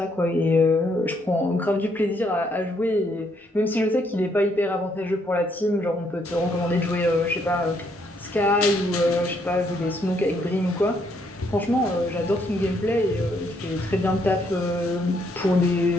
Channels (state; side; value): normal; both; correlation 0.72